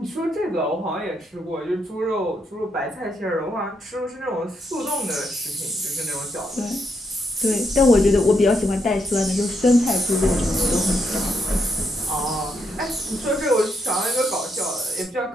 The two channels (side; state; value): both; normal; correlation 0.78